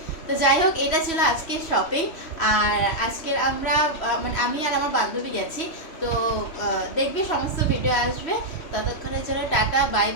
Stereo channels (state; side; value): late; right; 3.1 ms